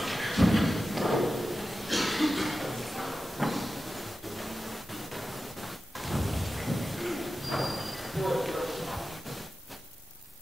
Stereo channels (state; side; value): normal; both; correlation 0.93